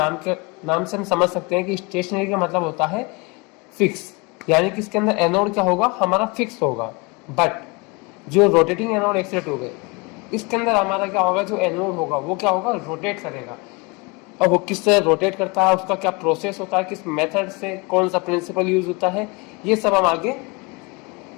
से हम समझ सकते हैं कि स्टेशनरी का मतलब होता है फिक्स, यानी कि इसके अंदर एनोड क्या होगा, हमारा फिक्स होगा। बट जो रोटेटिंग एनोड एक्सरे ट्यूब है, इसके अंदर हमारा क्या होगा, जो एनोड होगा वो क्या होगा, रोटेट करेगा। अब वो किस तरह रोटेट करता है, उसका क्या प्रोसेस होता है, किस मेथड से, कौन सा प्रिंसिपल यूज होता है, ये सब हम आगे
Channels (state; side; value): quieter; right; 28.0 dB